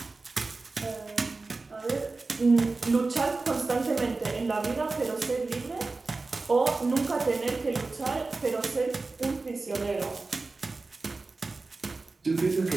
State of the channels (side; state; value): left; quieter; 3.6 dB